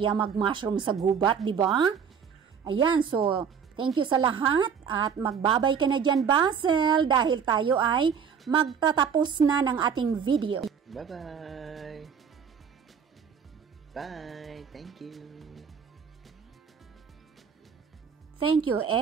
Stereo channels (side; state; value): left; quieter; 6.9 dB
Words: mag-mushroom sa gubat, diba? Ayan, so, thank you sa lahat at magbabay ka na dyan, Basil, dahil tayo ay magtatapos na ng ating video. Bye-bye! Bye! Thank you! Thank you